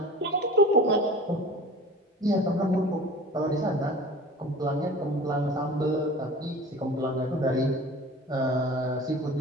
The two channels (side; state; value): both; normal; correlation 0.39